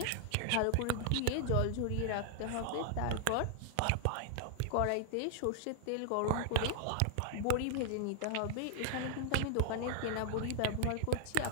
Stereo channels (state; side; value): different; both; correlation 0.00